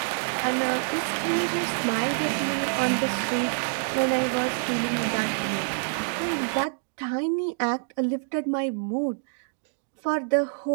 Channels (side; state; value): left; silent; digital silence